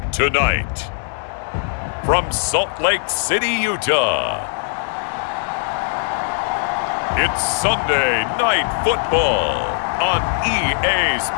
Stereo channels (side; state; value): right; silent; digital silence